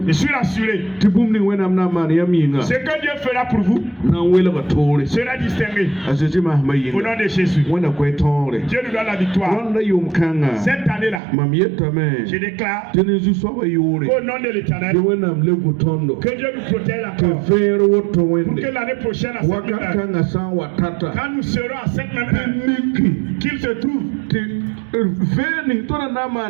Je suis rassuré. Tibum ni wena amna man yaminga. Ce que Dieu fera pour vous Na wela ka tore. sera distingué. Asisi Au mahmayinga. nom de Jésus. Wena kwa tore. Dieu nous donne la victoire. Wanda yum kanga. Cette année-là, Mam yetame. je déclare Tenezu soba yore. au nom de l'Éternel Ye wena amlegu tondo. que Dieu nous protège Ke encore. vero woto Pour que wende. l'année prochaine, à cette même Waka heure, kanga san watata. quand nous serons à cette même heure, Niki. qu'il se trouve Te veni tona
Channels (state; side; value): drops out; left; at 11.2 s